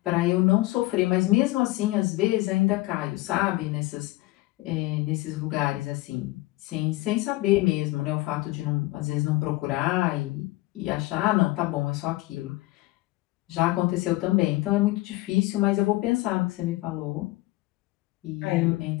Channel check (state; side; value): quieter; right; 20.0 dB